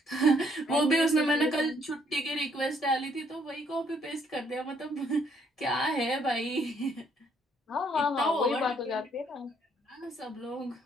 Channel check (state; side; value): normal; both; correlation 0.68